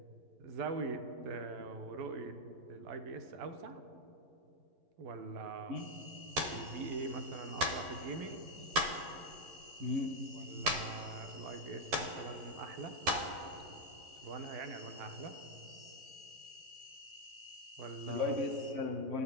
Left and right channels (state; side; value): late; left; 11 ms